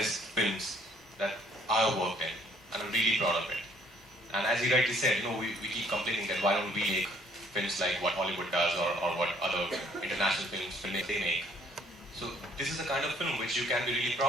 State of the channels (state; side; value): normal; both; correlation 0.62